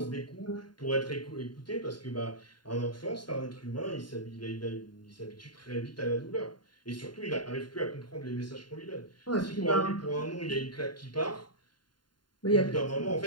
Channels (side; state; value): right; late; 0.71 ms